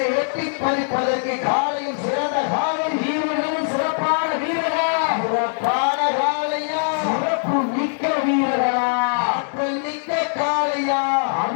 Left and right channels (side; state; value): right; silent; digital silence